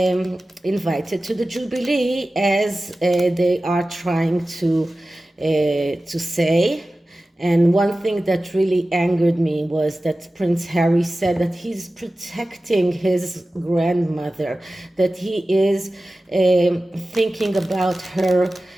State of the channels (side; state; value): both; normal; correlation 0.96